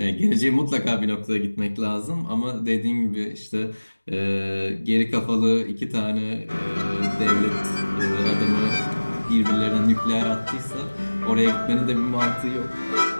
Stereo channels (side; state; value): both; inverted; correlation -1.00